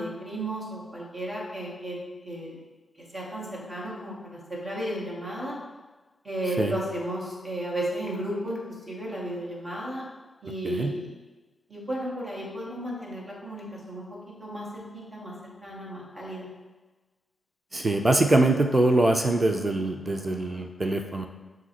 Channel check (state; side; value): normal; both; correlation 0.84